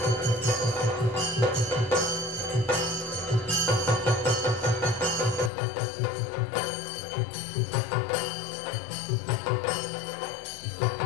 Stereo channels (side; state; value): right; drops out; at 5.5 s